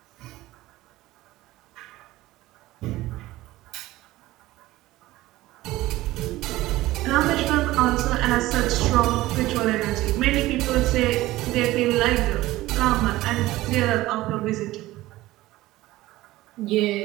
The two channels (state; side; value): quieter; left; 17.3 dB